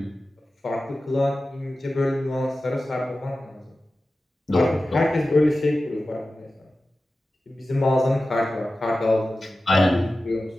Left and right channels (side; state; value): both; normal; correlation 0.94